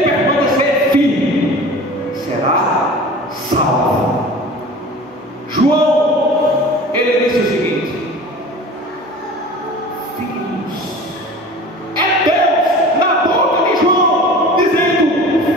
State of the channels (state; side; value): normal; both; correlation 0.39